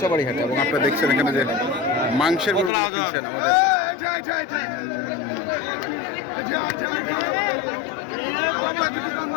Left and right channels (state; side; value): drops out; right; at 2.7 s